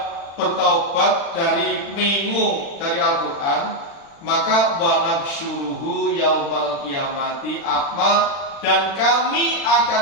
bertaubat dari mengu dari Al-Quran, maka wanaksyuruhu yaumal kiamati akma, dan kami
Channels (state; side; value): late; right; 36 ms